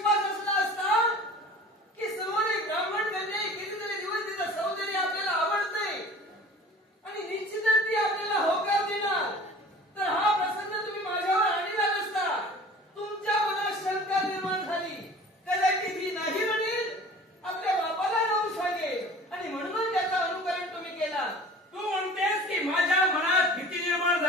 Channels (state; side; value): normal; both; correlation 0.43